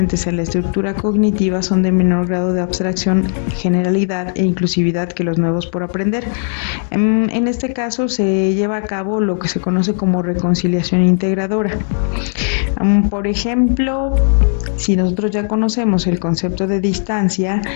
en la estructura cognitiva son de menor grado de abstracción, generalidad e inclusividad que los nuevos por aprender. En este caso, se lleva a cabo lo que se conoce como reconciliación integradora. Por ejemplo, si nosotros ya conocemos el concepto de distancia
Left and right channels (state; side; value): silent; right; digital silence